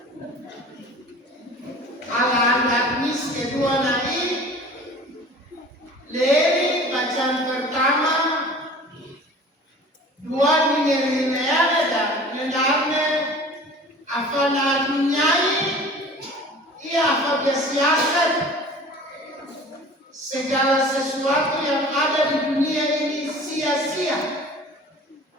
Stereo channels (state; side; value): normal; both; correlation 0.43